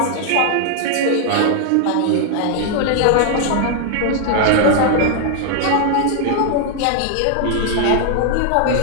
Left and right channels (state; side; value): different; both; correlation 0.00